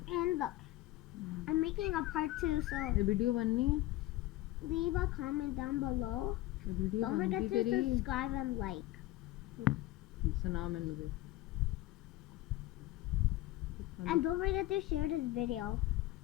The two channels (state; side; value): quieter; right; 16.6 dB